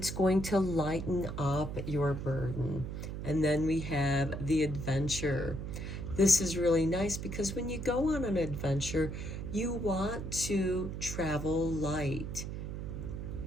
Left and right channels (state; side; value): noise; right; hum, 6 dB below the sound